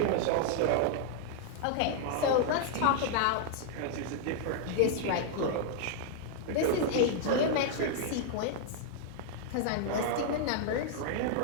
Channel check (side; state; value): both; different; correlation 0.00